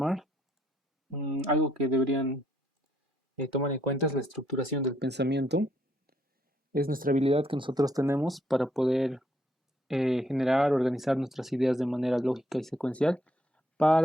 algo que deberían tomar en cuenta es la estructuración del pensamiento. Es nuestra habilidad que nosotros tenemos para poder generar, organizar nuestras ideas de manera lógica y secuencial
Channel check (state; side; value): normal; both; correlation 0.71